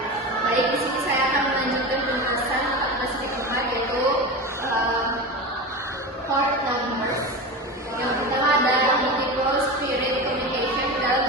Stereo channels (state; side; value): normal; both; correlation 0.25